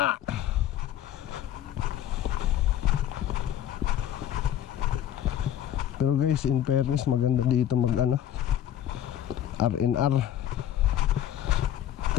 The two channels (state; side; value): quieter; right; 11.1 dB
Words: Pero guys, in fairness maganda dito mag ano, R&R.